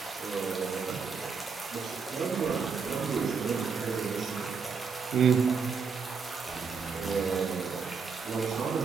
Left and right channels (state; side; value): quieter; left; 5.5 dB